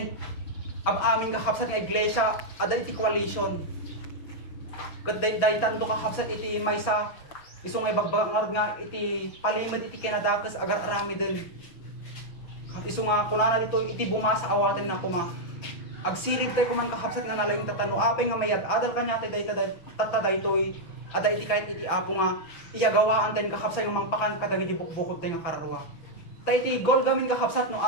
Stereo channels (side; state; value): right; late; 6.0 ms